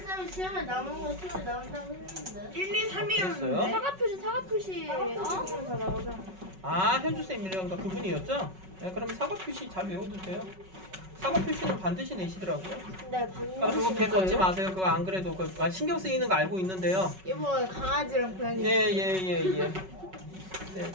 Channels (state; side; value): late; left; 5.3 ms